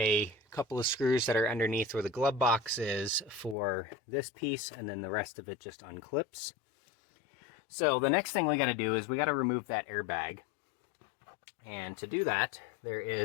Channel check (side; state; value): right; drops out; at 3.6 s